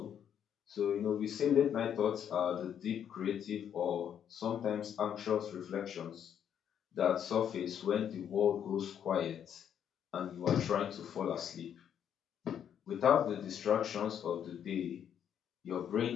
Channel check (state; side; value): quieter; right; 9.0 dB